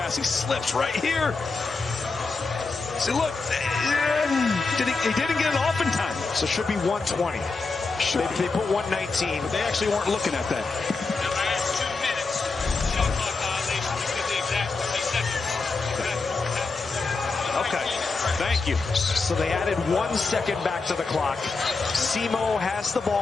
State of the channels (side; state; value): right; quieter; 4.1 dB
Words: He slips right here. See, look, he didn't get it off in time. So it should be 120. They put 119. But they actually weren't looking at that. Okay, thank you. So they added 1 second back to the clock. Simo has the